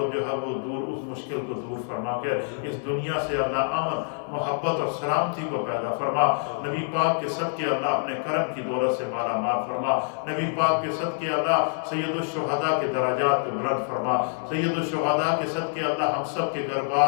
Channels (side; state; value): right; silent; 61 dB below the other